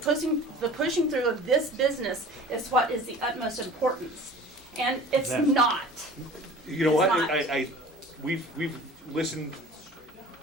through of this business is what is the utmost importance. And it's not. You know what? We've listened,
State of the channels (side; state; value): both; normal; correlation 0.43